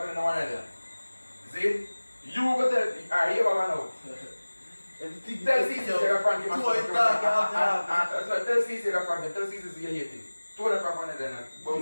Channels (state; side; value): inverted; both; correlation -1.00